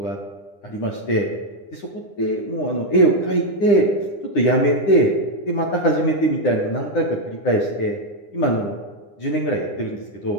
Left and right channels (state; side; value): late; right; 9.8 ms